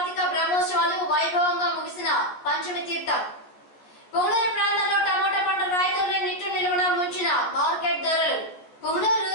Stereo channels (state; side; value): late; right; 14 ms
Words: బ్రహ్మోత్సవాలు వైభవంగా ముగిసిన పంచమి తీర్థం. పుంగనూరు ప్రాంతంలో టమాటా పంట రైతుల్ని నిట్టు నిలువున ముంచిన మార్కెట్ ధరలు. పుంగనూరు